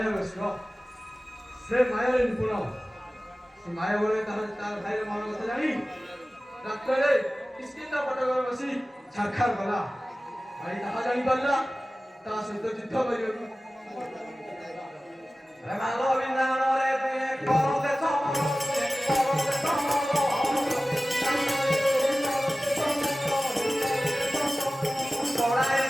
ସେ ମାୟାରେ ନିପୁଣ ସେ ମାୟା ବଳରେ ତାର ଭାଇର ମନ କଥା ଜାଣି ରାତ୍ରରେ କିସ୍କିନ୍ଦ ପଟକରେ ବସି ଛାରଖାର କଲା ଭାଇ ତାହା ଜାଣିପାରିଲା ତା ସହିତ ଯୁଦ୍ଧ କରିବାକୁ ମାଲ ବିନ୍ଧାଣରେ ତୁଏ କରତେ ସମର କରତେ ସମର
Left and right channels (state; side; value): normal; both; correlation 0.97